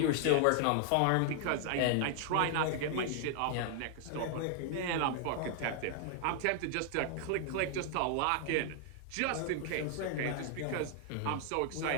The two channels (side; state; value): both; different; correlation 0.00